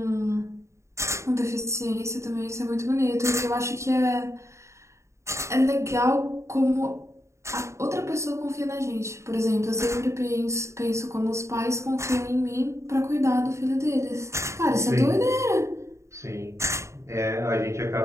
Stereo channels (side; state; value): left; late; 0.14 ms